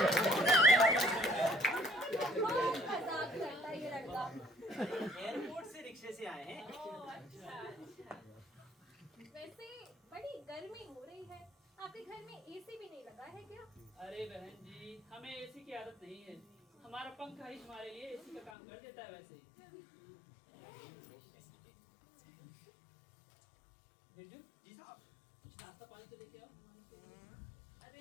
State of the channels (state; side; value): drops out; right; at 18.5 s